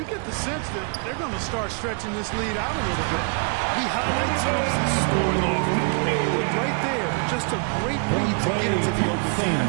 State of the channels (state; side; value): quieter; left; 36.8 dB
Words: get the sense that they're going to start stretching this lead out a little bit. We highlight Thompson scoring often, but right there, just a great read to get into the open